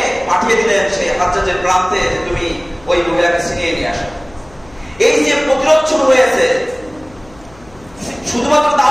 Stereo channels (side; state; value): left; noise; hum, 24 dB below the sound